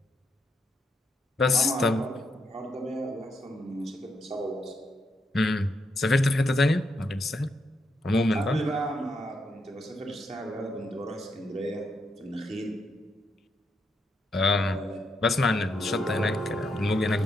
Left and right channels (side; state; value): both; normal; correlation 0.79